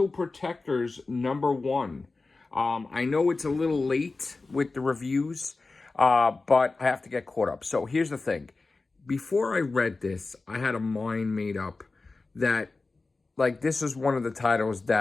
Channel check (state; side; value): quieter; right; 3.6 dB